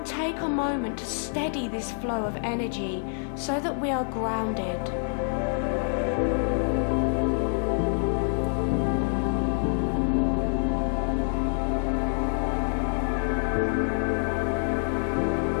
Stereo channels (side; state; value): right; silent; 60 dB below the other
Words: take a moment to steady this flow of energy so that we are grounded.